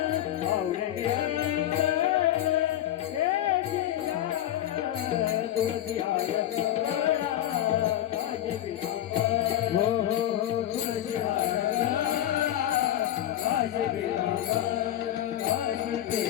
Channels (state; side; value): quieter; right; 12.4 dB